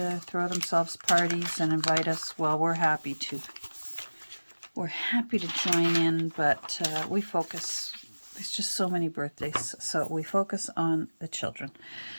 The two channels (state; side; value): inverted; both; correlation -1.00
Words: throw themselves parties and invite us, well, we're happy to. We're happy to join in, but we focus, there's just so many birthdays, so we focus on the children.